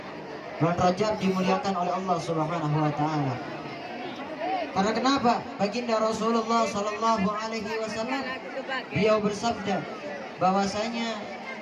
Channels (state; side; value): identical; both; correlation 1.00